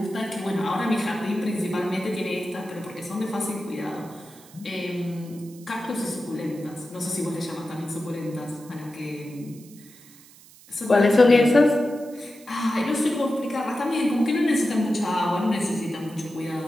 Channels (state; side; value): noise; right; hiss, 23 dB below the sound